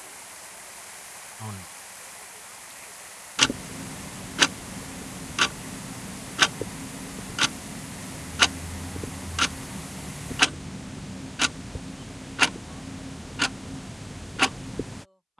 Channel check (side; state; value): both; identical; correlation 1.00